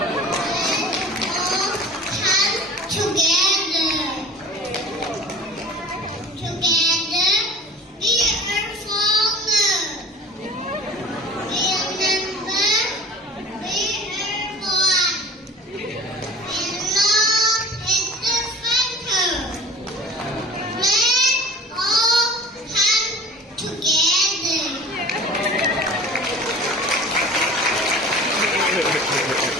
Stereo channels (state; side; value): normal; both; correlation 0.42